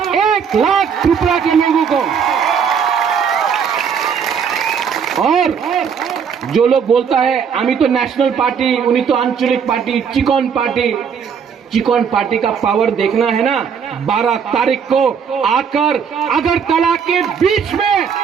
1 लाख त्रिपुरा के लोगों को। और जो लोग बोलता है आमी तो नेशनल पार्टी, उन्हीं तो आंचलिक party, chicken party, chicken party का पावर देखना है ना, 12 तारीख को आकर अगरतला के बीच में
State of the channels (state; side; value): quieter; left; 6.9 dB